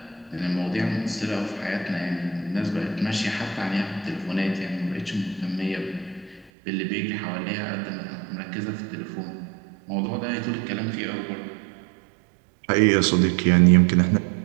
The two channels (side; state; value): left; drops out; at 6.5 s